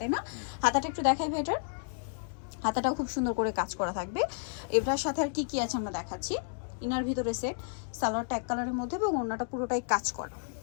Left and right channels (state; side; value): silent; right; digital silence